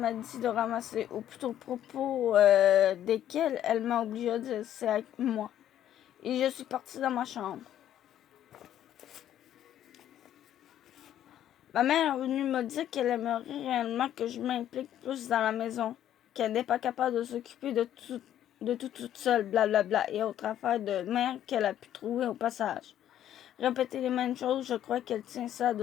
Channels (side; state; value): right; quieter; 11.3 dB